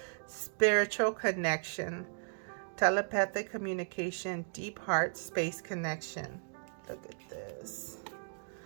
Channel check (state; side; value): silent; left; digital silence